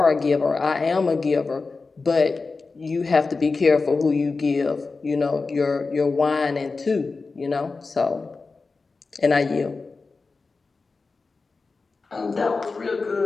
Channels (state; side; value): quieter; right; 4.1 dB